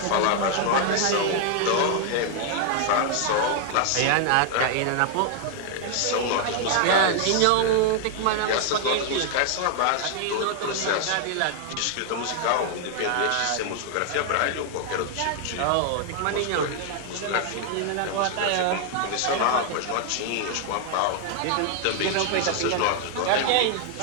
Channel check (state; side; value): different; both; correlation 0.00